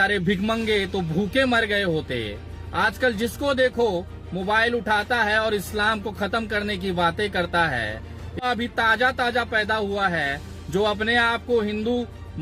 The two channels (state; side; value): identical; both; correlation 1.00